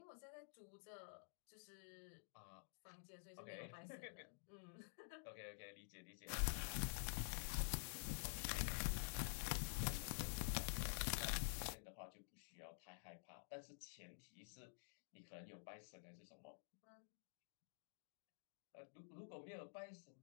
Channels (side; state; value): right; silent; digital silence